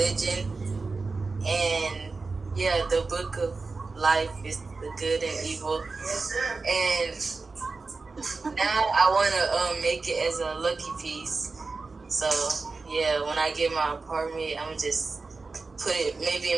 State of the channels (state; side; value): quieter; left; 4.0 dB